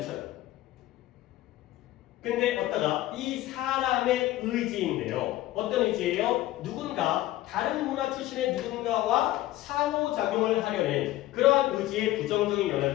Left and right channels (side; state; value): right; quieter; 15.8 dB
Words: 근데 어따가 이 사람의 의지인데요. 어떤 의지예요? 누군가 다른 문화 출신의 누군가와 상호작용을 하려는 그러한 의지에 부정적인 영향을